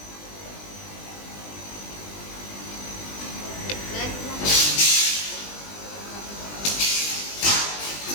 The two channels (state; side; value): late; right; 20 ms